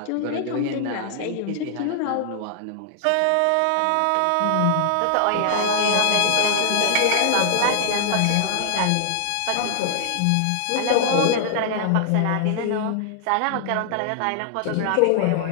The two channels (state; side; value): different; both; correlation 0.00